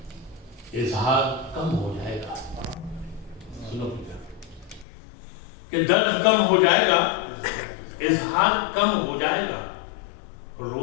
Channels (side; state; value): right; drops out; at 4.9 s